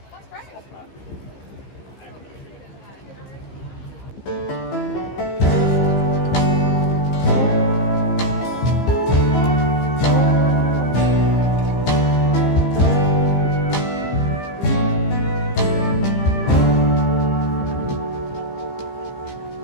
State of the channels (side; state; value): right; late; 15 ms